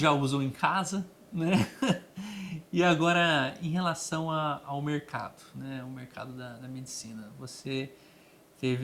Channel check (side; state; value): both; identical; correlation 1.00